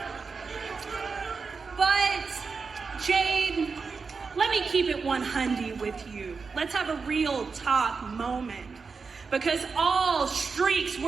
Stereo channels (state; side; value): quieter; left; 4.9 dB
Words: But Jade, let me keep it 100 with you. Let's have a real talk moment. Because all streaks